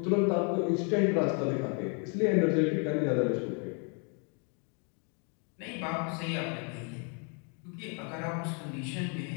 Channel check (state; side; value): quieter; right; 37.8 dB